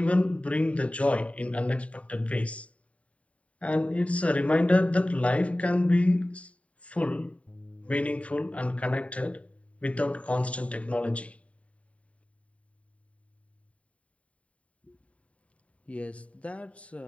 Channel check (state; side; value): late; right; 0.065 ms